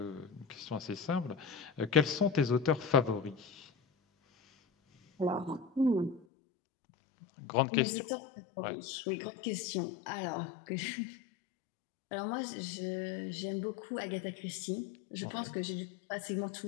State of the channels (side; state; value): right; drops out; at 6.2 s